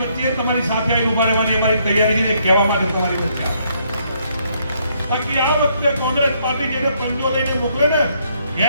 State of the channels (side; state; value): both; inverted; correlation -0.71